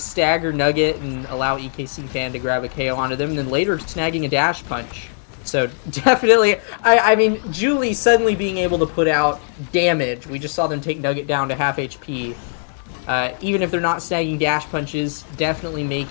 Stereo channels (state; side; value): silent; right; digital silence